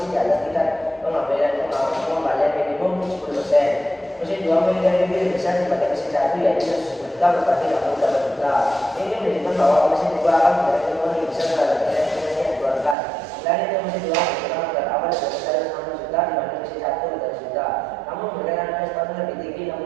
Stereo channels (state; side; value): drops out; left; at 13.0 s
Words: di atas tingkat pengembalian minimum 10%. Mesin 2 memiliki NPV lebih besar dibanding mesin 1 yaitu 10 juta berarti 80 juta. Ini menunjukkan bahwa mesin 2 akan memberikan keuntungan lebih besar terhadap nilai yang dikeluarkan. Selain itu mesin 2 memiliki modal awal lebih besar 60 juta dibanding mesin 1 30 juta. Namun memberikan investasi lebih tinggi